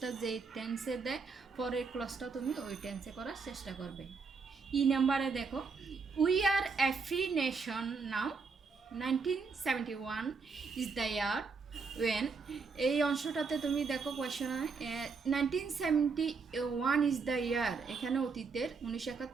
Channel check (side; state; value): left; quieter; 4.8 dB